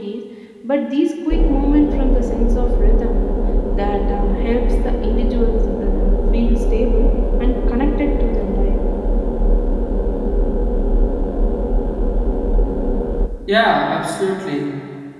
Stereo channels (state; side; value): identical; both; correlation 1.00